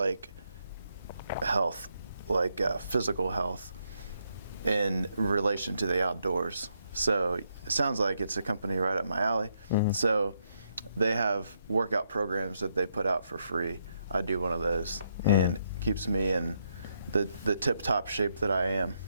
health, like physical health in relation to the outdoors. So it sounds like it's a company right up my alley. So they have workout programs that they put out for free. I do one of those, and it keeps me in the tip-top shape that I am.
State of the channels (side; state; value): both; inverted; correlation -0.77